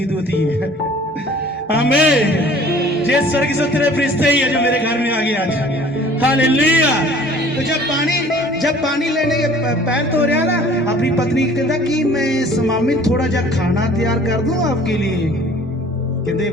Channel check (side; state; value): both; normal; correlation 0.50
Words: दूत ही है। आमीन। ये स्वर्गीय से तेरे फरिश्ते ही है जो मेरे घर में आ गए आज। हालेलुया। तो जब पानी लेने के पैर धो रहा ना, अपनी पत्नी कहता कि मैं स्वामी थोड़ा जा खाना तैयार कर दूं आपके लिए। कहते